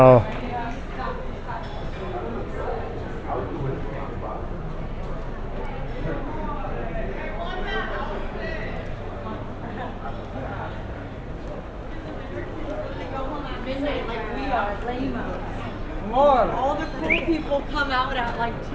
All the cool people come out at like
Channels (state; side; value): identical; both; correlation 1.00